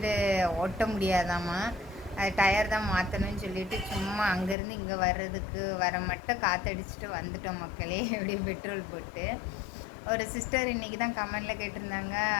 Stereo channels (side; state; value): right; drops out; at 4.5 s